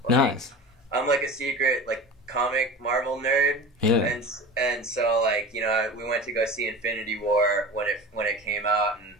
Like, nice. I'm like a secret like comic Marvel nerd. Yeah. And so like we went to go see Infinity War when it came out, and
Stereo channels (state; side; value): normal; both; correlation 0.33